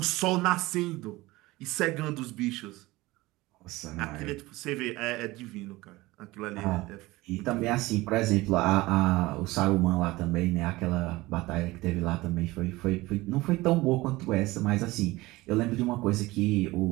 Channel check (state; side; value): quieter; left; 19.9 dB